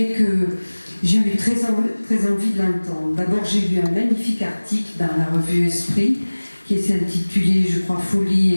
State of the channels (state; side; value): inverted; both; correlation -1.00